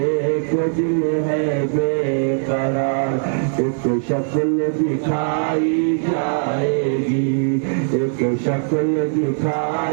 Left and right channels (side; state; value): left; silent; digital silence